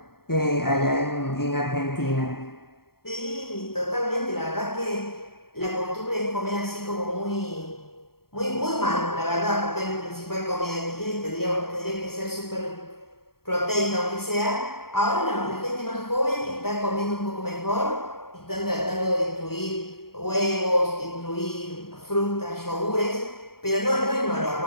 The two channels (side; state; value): right; late; 0.94 ms